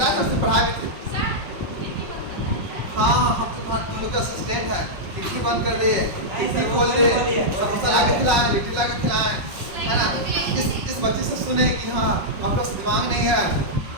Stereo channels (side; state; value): left; late; 5.5 ms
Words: है सबसे पढ़ा भी थे। हाँ, हम तो तुम लोग का असिस्टेंट है। खिड़की बंद कर दे, खिड़की खोल दे, समोसा ला के खिलाएं, लिट्टी ला के खिलाएं, है ना? इस बच्चे से सुने कि हाँ आप लोग दिमाग नहीं है।